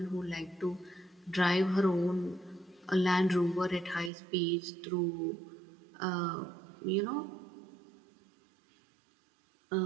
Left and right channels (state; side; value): drops out; left; at 4.1 s